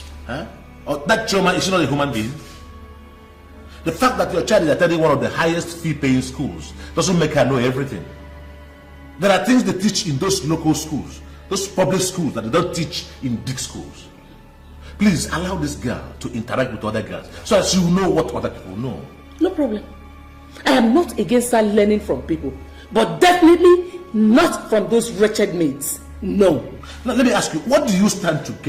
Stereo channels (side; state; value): both; identical; correlation 1.00